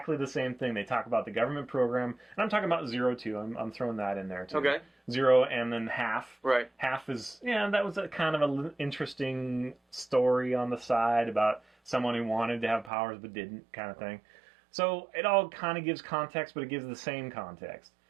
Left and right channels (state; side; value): drops out; left; at 12.9 s